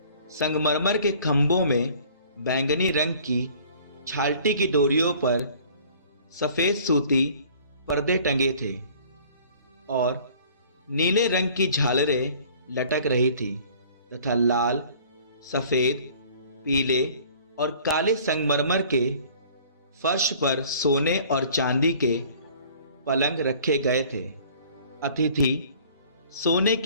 संगमरमर के खंभों में बैंगनी रंग की छालटी की डोरियों पर सफेद सूती पर्दे टंगे थे और नीले रंग की झालरें लटक रही थी तथा लाल, सफेद, पीले और काले संगमरमर के फर्श पर सोने और चांदी के पलंग रखे गए थे। अतिथि सोने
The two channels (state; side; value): inverted; both; correlation -0.51